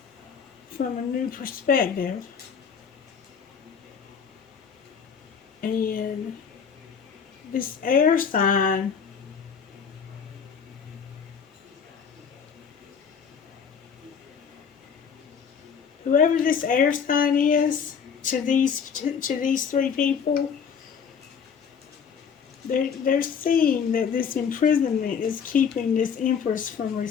from a new perspective. And this air sign whoever this air sign is to these three people, They're seeing that this imprisonment is keeping this Empress from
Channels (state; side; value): quieter; right; 6.8 dB